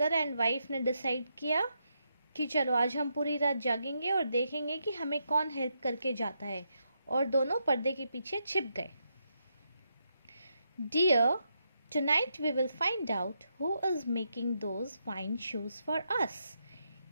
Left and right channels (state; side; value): inverted; both; correlation -0.81